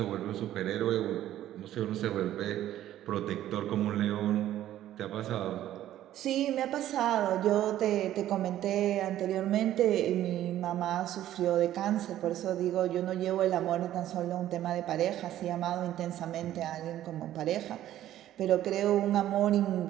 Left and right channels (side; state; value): left; quieter; 12.8 dB